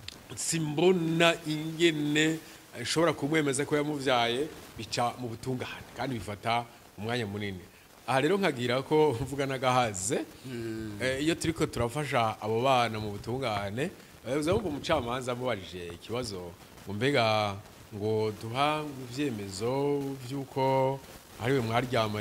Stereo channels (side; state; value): both; identical; correlation 1.00